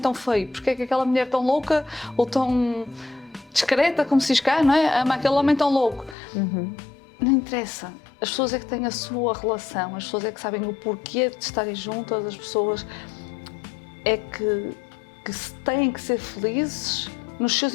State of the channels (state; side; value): drops out; right; at 6.2 s